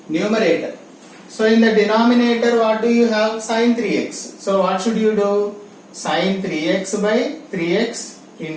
numerator, so in the denominator what do you have? Sin 3x. So what should you do? Sin 3x by 3x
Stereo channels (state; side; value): identical; both; correlation 1.00